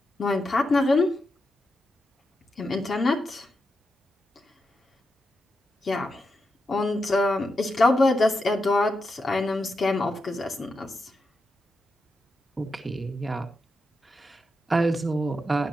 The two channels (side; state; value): both; normal; correlation 0.87